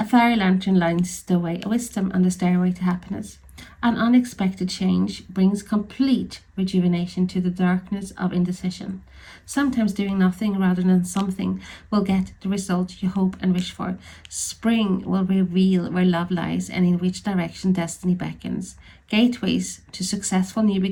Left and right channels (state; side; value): identical; both; correlation 1.00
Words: fairy lantern lights the way of wisdom on the stairway to happiness. An unexpected change brings complete rejuvenation to the darkness of indecision. Sometimes doing nothing rather than something will get the result you hope and wish for. Spring will reveal where love lies and in which direction destiny beckons. Gateways to successful new